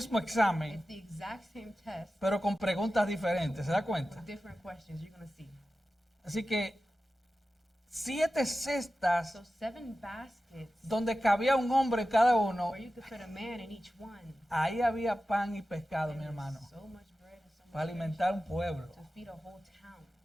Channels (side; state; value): both; normal; correlation 0.94